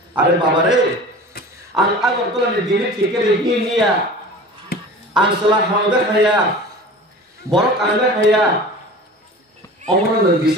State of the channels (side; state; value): both; normal; correlation 0.38